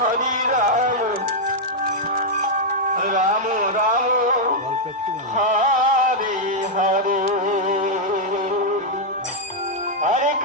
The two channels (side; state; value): both; normal; correlation -0.03